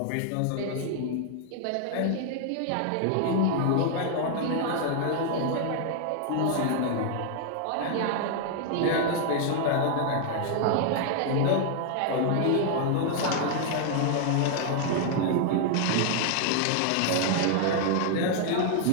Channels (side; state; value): both; different; correlation 0.00